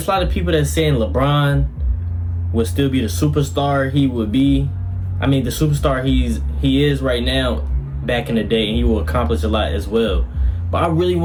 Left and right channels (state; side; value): identical; both; correlation 1.00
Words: of people that saying LeBron would still be the superstar he would be. I mean, the superstar he is right now back in the day, and he will accomplish a lot as well. But I really